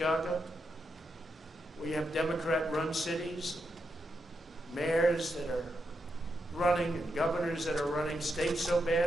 We have Democrat-run cities, mayors that are running, and governors that are running states so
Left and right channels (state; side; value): normal; both; correlation 0.84